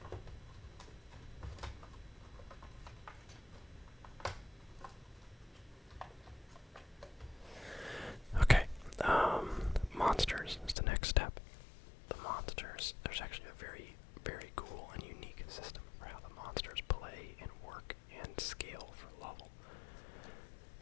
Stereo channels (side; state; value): right; drops out; at 10.8 s